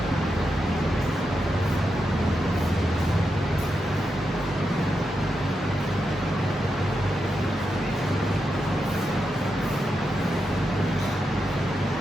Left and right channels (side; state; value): both; normal; correlation 0.86